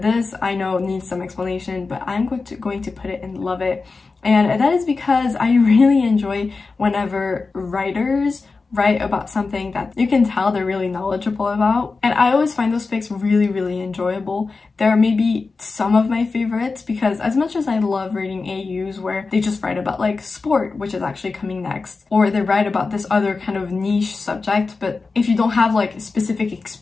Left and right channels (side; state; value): right; quieter; 4.1 dB